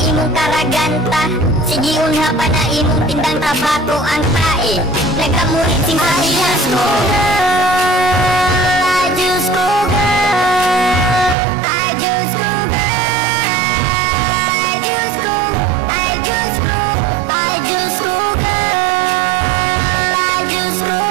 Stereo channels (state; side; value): drops out; left; at 11.4 s